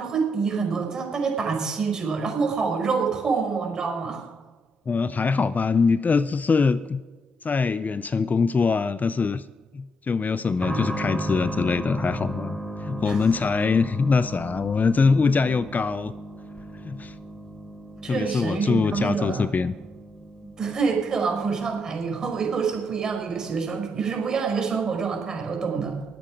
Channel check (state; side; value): normal; both; correlation 0.80